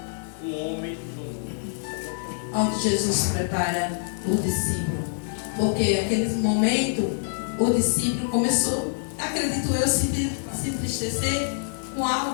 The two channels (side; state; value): right; silent; digital silence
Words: um homem no mundo. Onde Jesus prepara o discípulo. Porque naquele momento o discípulo começou, acredito eu, se entristecer com